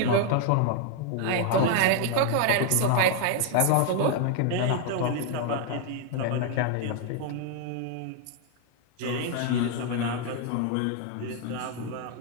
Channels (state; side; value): different; both; correlation 0.00